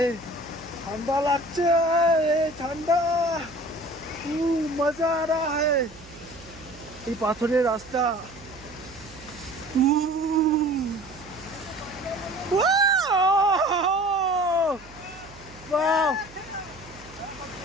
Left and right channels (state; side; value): noise; right; hum, 21 dB below the sound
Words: ঠান্ডা লাগছে, ঠান্ডা, মজা আ রা হ্যায়। এই পাথরের রাস্তা,